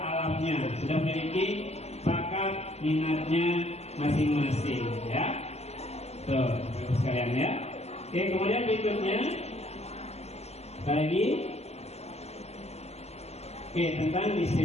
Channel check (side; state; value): right; late; 0.30 ms